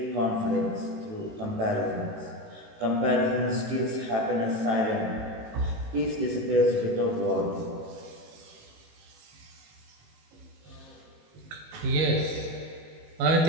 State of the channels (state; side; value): late; left; 18 ms